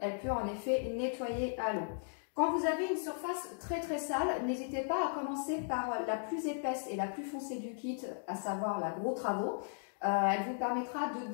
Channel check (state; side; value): silent; right; digital silence